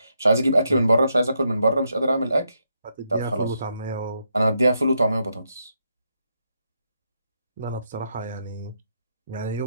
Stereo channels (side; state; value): both; inverted; correlation -0.80